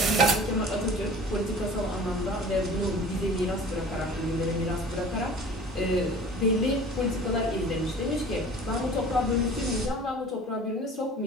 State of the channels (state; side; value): normal; both; correlation 0.43